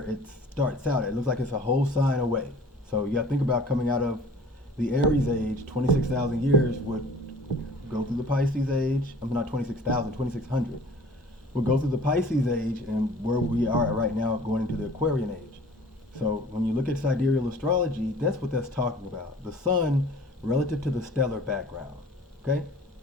it starts out. It looks like it's a whole sign away. So you got to think about coming out of the Aries age, 26,000 years would go through the Pisces age. I'm not 26,000, 2600. We'll go through the Pisces age and where we are right now going into the Aquarian age. So when you look at sidereal astrology, that's what that's talking about. The sun relative to the stellar background. Okay?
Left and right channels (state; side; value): normal; both; correlation 0.48